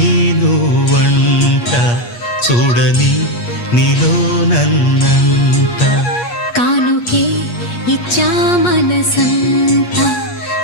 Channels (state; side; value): late; right; 8.4 ms